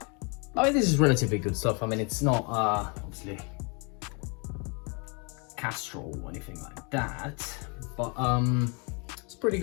I mean, this is relatively good stuff. I mean, it's not obviously Castrol or anything like that, but it's pretty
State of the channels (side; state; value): right; quieter; 33.4 dB